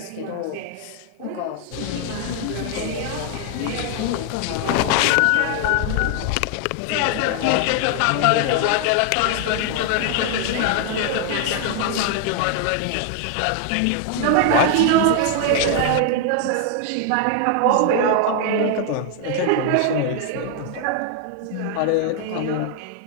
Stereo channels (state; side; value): different; both; correlation 0.00